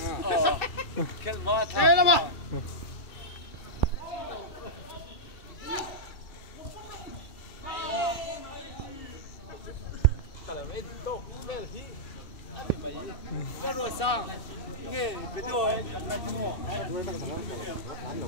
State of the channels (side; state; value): right; late; 2.3 ms